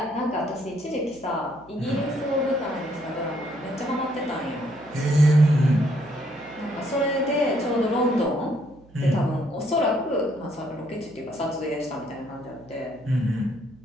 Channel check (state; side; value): noise; right; hum, 26 dB below the sound